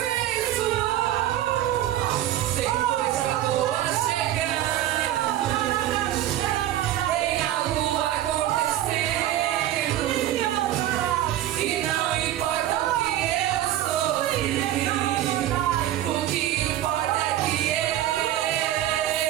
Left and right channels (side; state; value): left; quieter; 13.0 dB